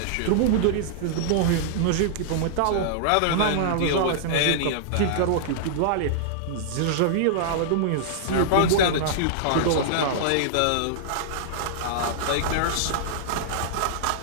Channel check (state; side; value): different; both; correlation -0.01